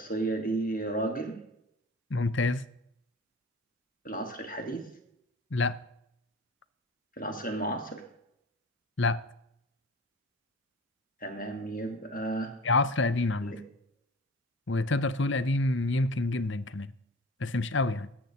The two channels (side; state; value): both; normal; correlation 0.39